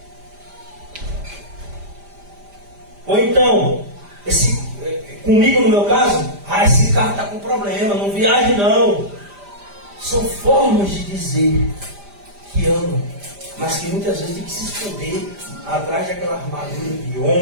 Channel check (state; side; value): late; left; 5.0 ms